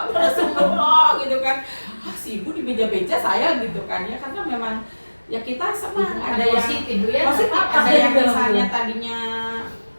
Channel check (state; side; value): inverted; both; correlation -1.00